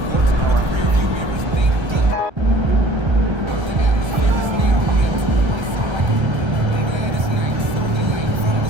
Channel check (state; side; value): late; left; 1.3 ms